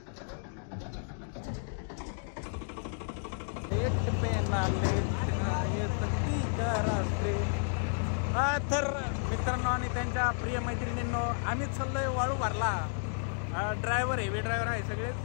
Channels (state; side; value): silent; right; digital silence